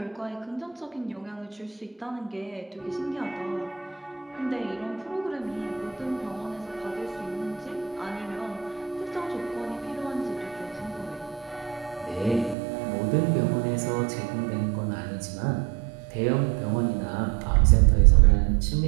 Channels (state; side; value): drops out; left; at 12.6 s